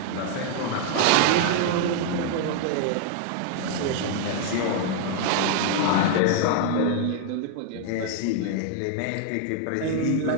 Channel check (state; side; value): different; both; correlation 0.00